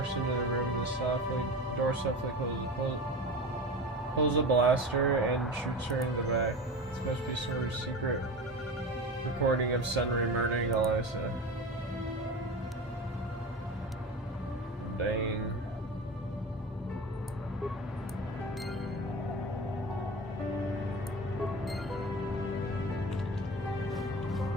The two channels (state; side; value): normal; both; correlation 0.30